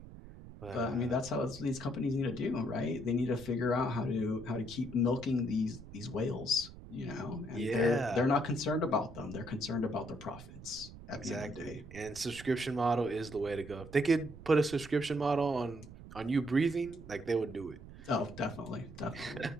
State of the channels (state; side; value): noise; right; rumble, 15 dB below the sound